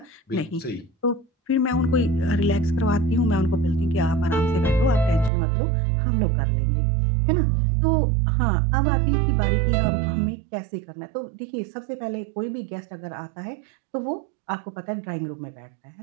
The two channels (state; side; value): drops out; left; at 5.3 s